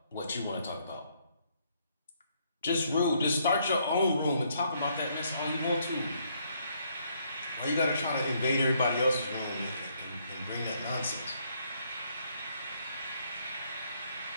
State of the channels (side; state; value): both; inverted; correlation -0.71